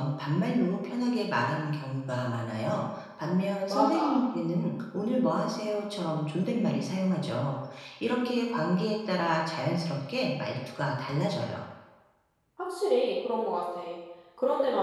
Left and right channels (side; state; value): both; identical; correlation 1.00